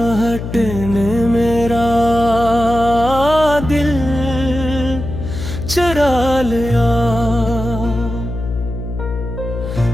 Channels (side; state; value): left; noise; hum, 7 dB below the sound